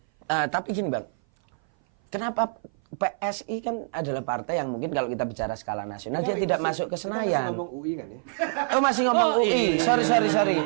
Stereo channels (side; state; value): left; silent; 57 dB below the other